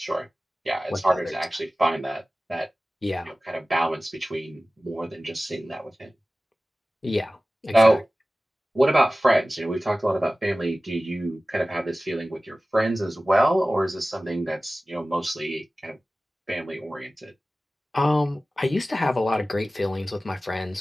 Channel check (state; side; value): normal; both; correlation 0.96